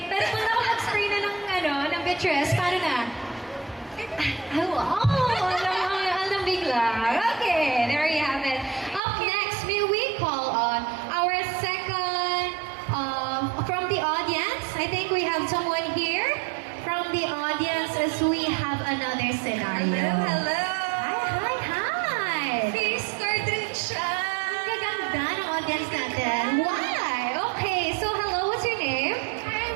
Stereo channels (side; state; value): left; drops out; at 9.0 s